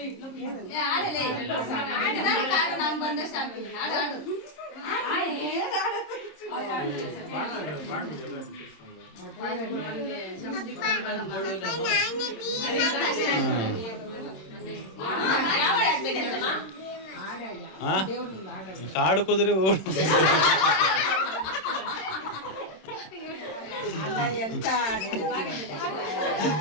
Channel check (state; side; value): late; right; 26 ms